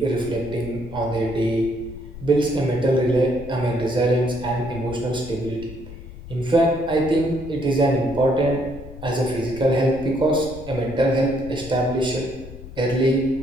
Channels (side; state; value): left; noise; rumble, 14 dB below the sound